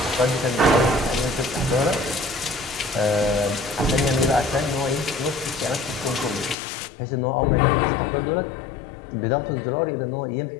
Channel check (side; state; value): right; drops out; at 6.6 s